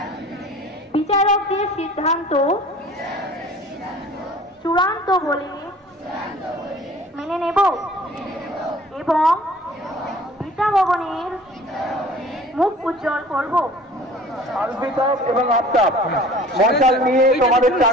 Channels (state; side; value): normal; both; correlation 0.47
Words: বিচারকদের সিদ্ধান্ত চূড়ান্ত বলে মেনে নেব এবং বিদ্যা ভবনের মুখ উজ্জ্বল করব। আলবিতাব এবং আফতাব মশাল নিয়ে তোমাদের